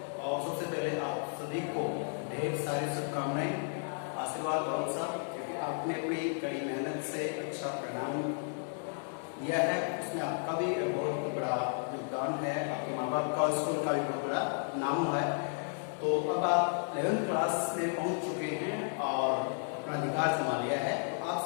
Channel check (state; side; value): silent; right; 56 dB below the other